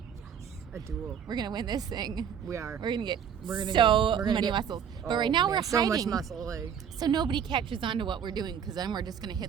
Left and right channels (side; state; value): left; quieter; 7.9 dB